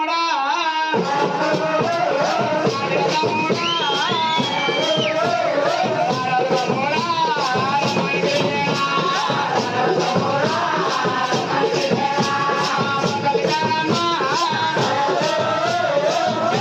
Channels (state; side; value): identical; both; correlation 1.00